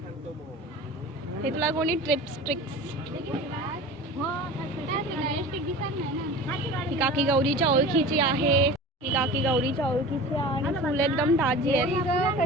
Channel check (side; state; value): both; normal; correlation 0.36